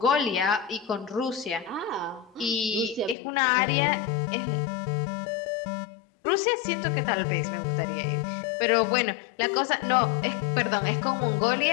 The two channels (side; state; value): right; drops out; at 3.2 s